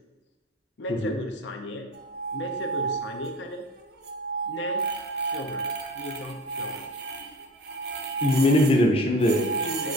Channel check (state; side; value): normal; both; correlation 0.39